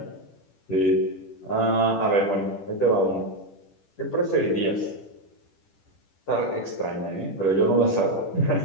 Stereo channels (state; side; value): late; right; 10 ms